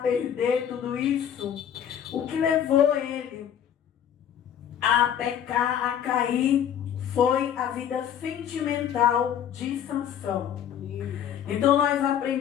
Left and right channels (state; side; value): quieter; right; 9.4 dB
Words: tudo isso? O que levou ele a pecar, a cair, foi a vida sentimental de Sansão. Então nós